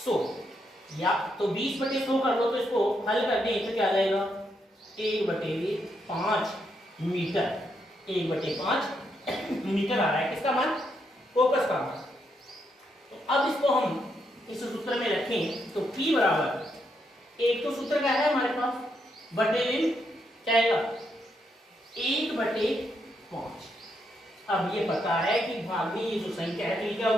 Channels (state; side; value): normal; both; correlation 0.79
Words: या तो 20/100 कर लो, तो इसको हल कर दें तो क्या आ जाएगा 1/5 मीटर, 1/5 मीटर आ रहा है, किसका मान, फोकस का मान। तो अब इसको हम इस सूत्र में रखें, तो P बराबर, एक तो सूत्र क्या है हमारे पास, बटे क्या आएगा 1/5। अब ये पता है कि भाग में ये जो संख्या है तो ये क्या